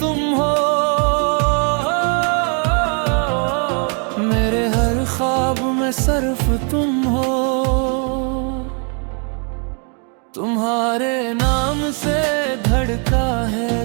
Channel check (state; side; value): quieter; left; 39.8 dB